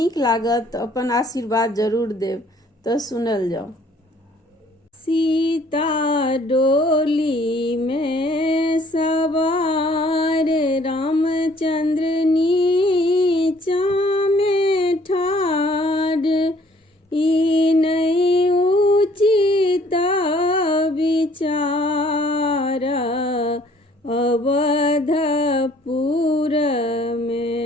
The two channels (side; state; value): both; normal; correlation 0.60